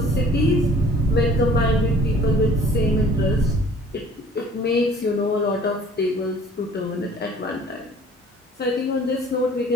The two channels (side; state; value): both; normal; correlation 0.52